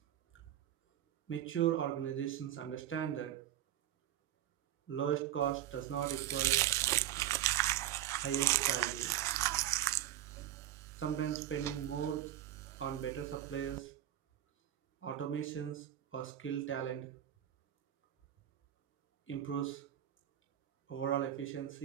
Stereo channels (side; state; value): left; quieter; 12.3 dB